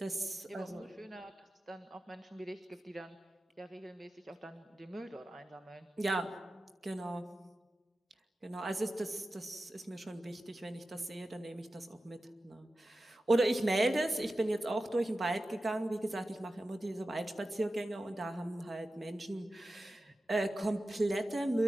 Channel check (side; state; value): both; normal; correlation 0.94